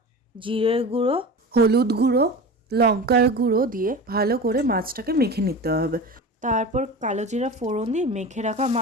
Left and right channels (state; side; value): normal; both; correlation 0.31